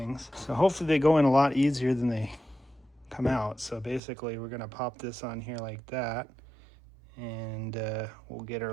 So hopefully they go in a lot easier than they come out. So basically we're gonna pop this on here like that, and we'll get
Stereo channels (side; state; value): left; drops out; at 4.0 s